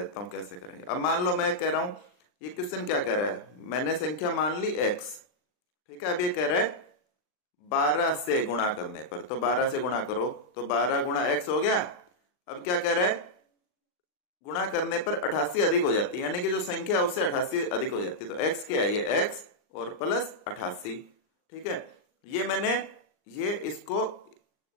हूं कैसे करेंगे। अब मान लो मैं कह रहा हूं, ये क्वेश्चन क्या कह रहा है, मैंने संख्या मान ली x। ठीक है, अब ये कह रहा है 12 से गुणा करने पर, तो 12 से गुणा करो तो 12 गुणा x हो गया। अब क्या कह रहा है, गुणा करने पर 88 अधिक हो जाती है, यानी कि जो संख्या है उससे 88 अधिक हो जाती है। तो x क्या है, ये x और प्लस 88। ठीक है, ये मैंने ये इसको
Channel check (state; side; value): late; right; 39 ms